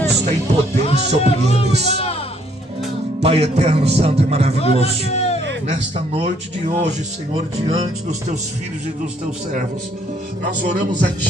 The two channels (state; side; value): normal; both; correlation 0.66